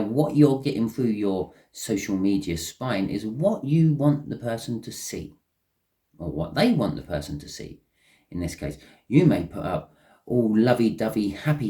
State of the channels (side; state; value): both; identical; correlation 1.00